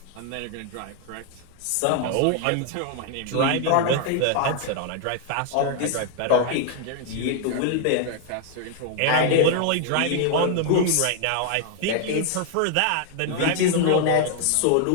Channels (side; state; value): both; different; correlation 0.00